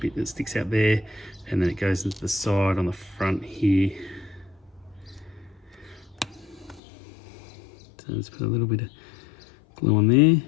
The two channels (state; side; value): drops out; right; at 6.8 s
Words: that sticks out there, and then it goes into the side on the front here. So let's put a little bit of glue on there.